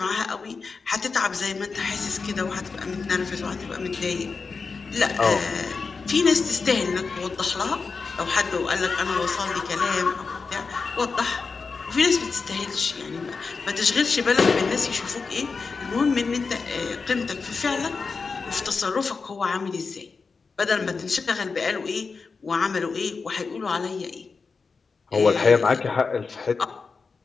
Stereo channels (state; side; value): quieter; right; 4.7 dB